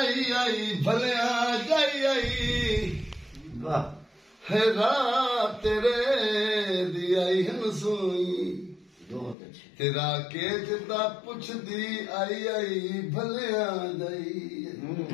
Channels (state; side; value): drops out; right; at 9.3 s